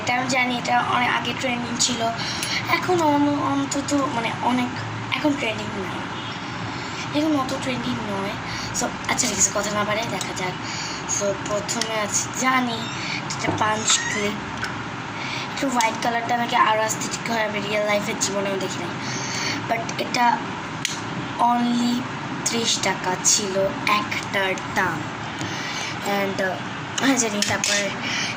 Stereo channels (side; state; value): both; identical; correlation 1.00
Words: এটা আমি জানি এটা অনেক আগে ট্রেন্ডিং ছিল, এখন অন্তত মানে অনেক এখন ট্রেন্ডিং নয়, এখন অত ট্রেন্ডিং নয়। সো আচ্ছা ঠিক আছে, কথা না বাড়াই দেখা যাক। সো প্রথমে আছে জানি এটা পাঞ্চ ক্লিপ, একটু হোয়াইট কালারটা আমাকে আরও আস্থেটিক হয়, আমি রিয়েল লাইফের জীবনেও দেখি নাই। বাট এটা অনলি 30 টাকা ছিল একটার দাম। অ্যান্ড জানি তারপরে